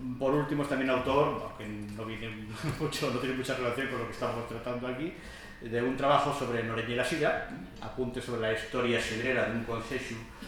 Por último, es también autor, aunque no tiene mucha relación con lo que estamos tratando aquí, de un trabajo sobre Noreña y la Silla, apunte sobre la historia sidrera de un concejo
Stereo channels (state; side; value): identical; both; correlation 1.00